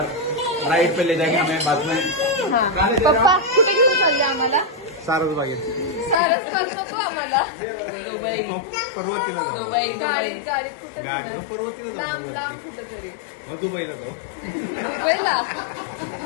Ride पे ले जाएंगे हमें बाद में. हा. पप्पा कुठे घेऊन चालले आम्हाला? सारसबागेत. सारसबाग नको आम्हाला. पर्वतीला जाऊ. गाडीत कुठे गाडी पर्वतीला लांब जाऊ. लांब कुठं तरी. दुबईला जाऊ. दुबईला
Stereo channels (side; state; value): right; drops out; at 6.2 s